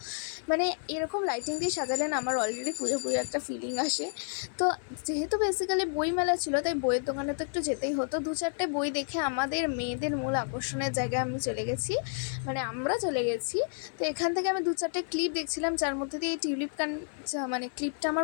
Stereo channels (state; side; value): silent; right; 55 dB below the other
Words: মানে এরকম লাইটিং দিয়ে সাজালে না আমার অলরেডি পুজো পুজো একটা ফিলিং আসে। তো যেহেতু বেসিক্যালি বই মেলা ছিল, তাই বইয়ের দোকানে তো একটু যেতেই হতো। 2-4টে বই দেখে আমাদের মেয়েদের মূল আকর্ষণের জায়গায় আমি চলে গেছি, মানে আমরা চলে গেছি। তো এখান থেকে আমি 2-4টে ক্লিপ দেখছিলাম, যার মধ্যে দিয়ে এই টিউলিপ মানে ক্লিপটা